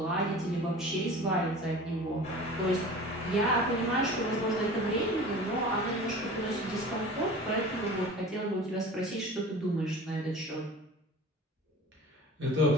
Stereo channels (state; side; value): normal; both; correlation 0.39